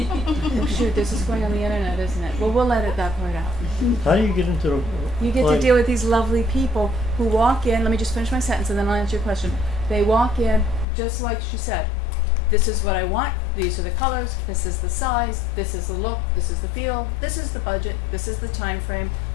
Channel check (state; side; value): drops out; right; at 10.9 s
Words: shoot, this is going on the internet, isn't it? Well, we'll edit that part out. How do you get into the You get to client- deal with these lovely people who walk in, let me just finish my sentence and then I'll answer your question. They walk in, just like she said, this is what I want, these are the colors, this is the size, this is the look, this is the feel, this is the budget, this is the time frame,